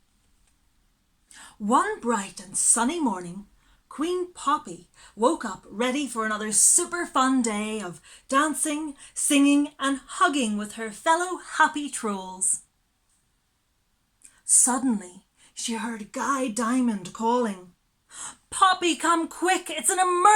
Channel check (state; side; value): identical; both; correlation 1.00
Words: One bright and sunny morning, Queen Poppy woke up ready for another super fun day of dancing, singing and hugging with her fellow happy trolls. Suddenly, she heard Guy Diamond calling, "Poppy, come quick, it's an